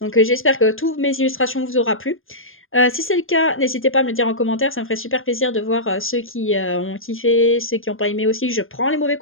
j'espère que toutes mes illustrations vous aura plu. Si c'est le cas, n'hésitez pas à me le dire en commentaire, ça me ferait super plaisir de voir ceux qui ont kiffé, ceux qui n'ont pas aimé aussi. Je prends les mauvais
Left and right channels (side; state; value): right; late; 0.60 ms